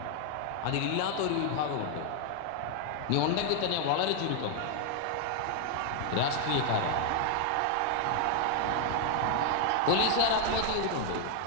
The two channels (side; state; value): both; different; correlation 0.00